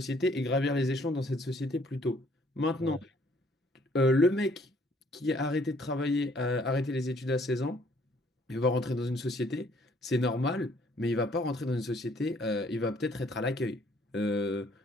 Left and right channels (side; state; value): both; normal; correlation 0.63